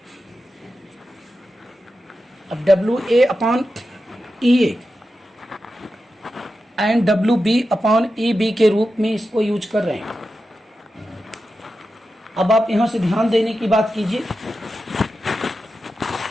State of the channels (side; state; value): both; normal; correlation 0.91